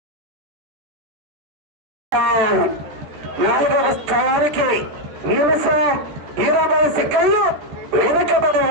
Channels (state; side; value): late; left; 14 ms